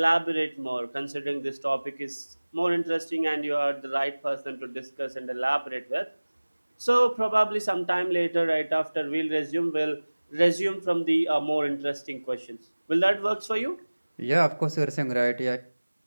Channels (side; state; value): both; inverted; correlation -1.00